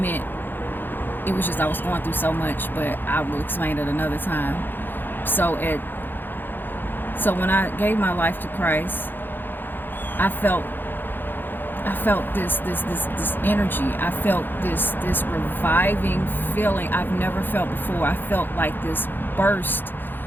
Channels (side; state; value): right; late; 0.094 ms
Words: It was just I was going through so much, but I will explain it another time. So when I gave my life to Christ, I felt this energy. I felt this reviving feeling I've never felt before. I felt like this burst